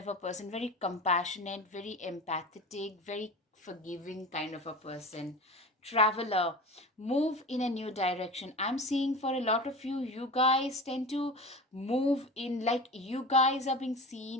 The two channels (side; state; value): both; normal; correlation 0.31